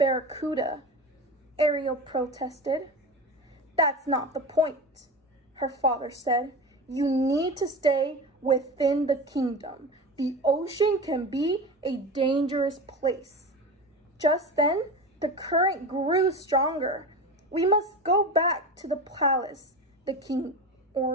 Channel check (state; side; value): normal; both; correlation 0.27